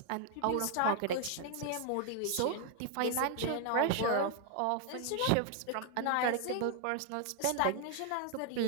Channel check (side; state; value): both; different; correlation 0.00